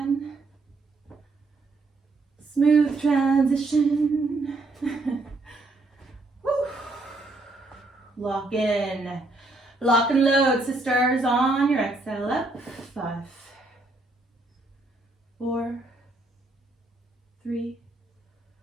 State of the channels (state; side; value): quieter; left; 3.1 dB